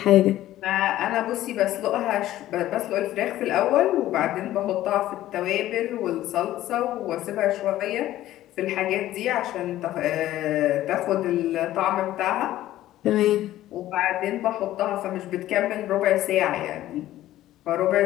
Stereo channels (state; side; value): quieter; right; 14.2 dB